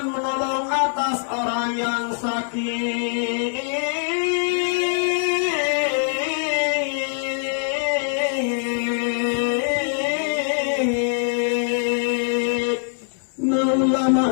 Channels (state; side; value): silent; right; 64 dB below the other